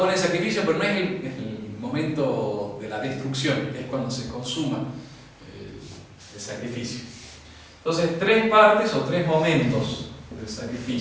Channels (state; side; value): identical; both; correlation 1.00